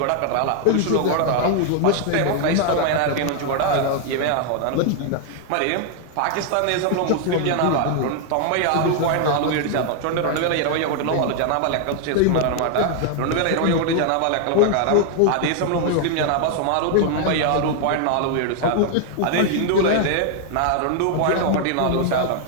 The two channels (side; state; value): both; different; correlation 0.00